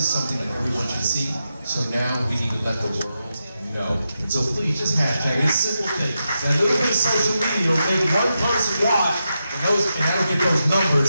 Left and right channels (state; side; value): inverted; both; correlation -0.88